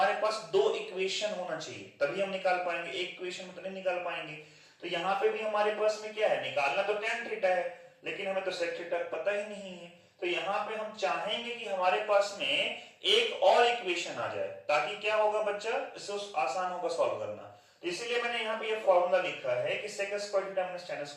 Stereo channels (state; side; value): identical; both; correlation 1.00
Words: पास दो इक्वेशन होना चाहिए, तभी हम निकाल पाएंगे। एक इक्वेशन में तो नहीं निकाल पाएंगे। तो यहाँ पे भी हमारे पास में क्या है, निकालना तो tan थीटा है, लेकिन हमें तो sec थीटा पता ही नहीं है। तो यहाँ पे हम चाहेंगे कि हमारे पास में एक और इक्वेशन आ जाए, ताकि क्या होगा बच्चा, इससे आसान होगा सॉल्व करना। तो इसलिए मैंने यहाँ पे ये फॉर्मूला लिखा है कि sec square theta minus tan